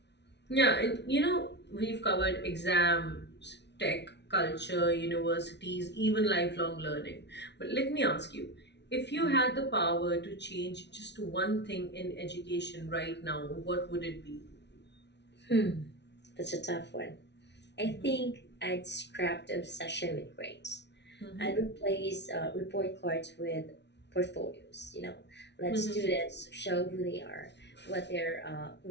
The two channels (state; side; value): late; right; 0.50 ms